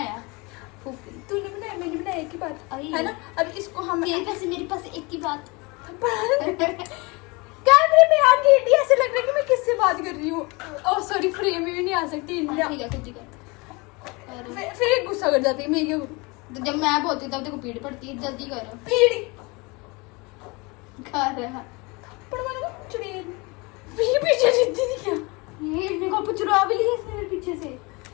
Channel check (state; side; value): quieter; right; 26.8 dB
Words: तूने बनाया, मैंने बनाया, एक ही बात अरे है ना। अब इसको हम तेरे पैसे मेरे पास एक की बात। कैमरे में आ गई, ऐसे लग रहा है कि मैं किससे बात कर रही हूँ। ओह सॉरी, फ्रेम में भी नहीं आ सकती। ठीक है खुद ही कर। फिर गुस्सा कर जाती है मैं क्या करूँ। तो जब मैं बोलती हूँ तब तेरे को पीड़ पड़ती है। जल्दी करो। पीड़ी कर रहा पर मैंने चुड़ैल पीछे जीती थी क्या। ये मेरे को चुरा भी लिया इसने मेरे पीछे से।